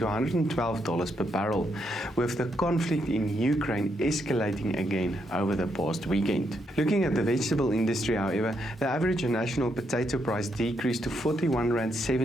$112 per barrel, with the conflict in Ukraine escalating again over the past weekend. Looking at the vegetable industry, however, the average national potato price decreased to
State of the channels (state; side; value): normal; both; correlation 0.78